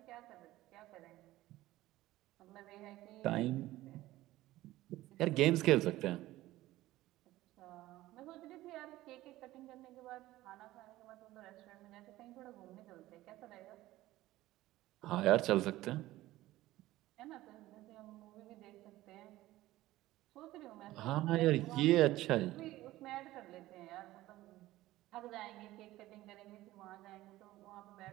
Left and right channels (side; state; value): left; quieter; 16.5 dB